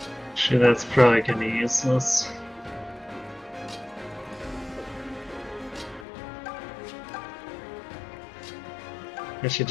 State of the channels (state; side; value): drops out; right; at 6.1 s